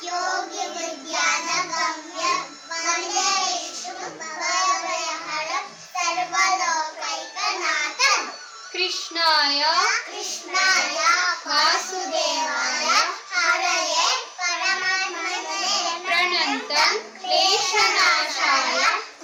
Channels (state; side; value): identical; both; correlation 1.00